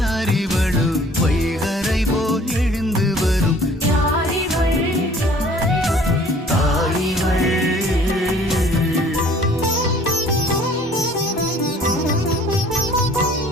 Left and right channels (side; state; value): both; normal; correlation 0.53